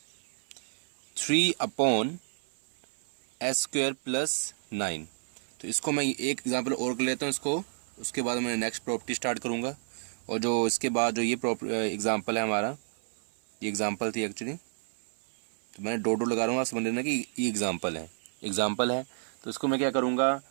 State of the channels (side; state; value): left; silent; 58 dB below the other